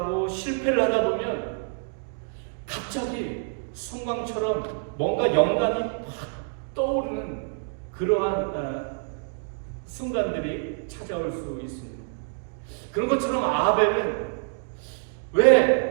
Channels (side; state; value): left; silent; digital silence